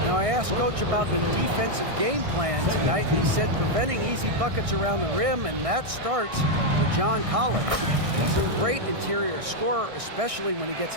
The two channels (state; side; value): late; left; 1.6 ms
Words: Now, I asked Coach about the defensive game plan tonight, and he said preventing easy buckets around the rim, and that starts with John Collins. He's a great interior scorer, especially when he gets